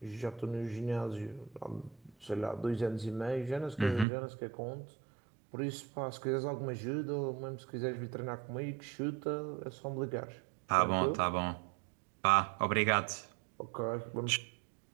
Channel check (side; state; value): left; drops out; at 4.0 s